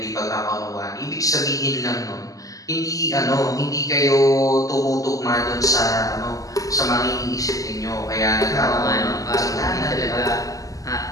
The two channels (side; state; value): right; late; 0.17 ms